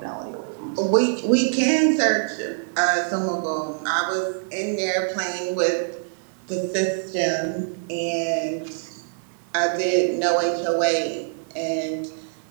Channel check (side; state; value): left; silent; digital silence